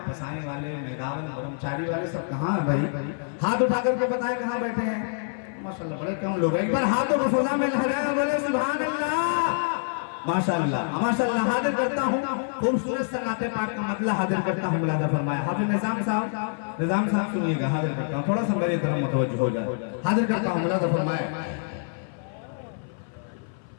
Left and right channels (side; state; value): right; silent; 56 dB below the other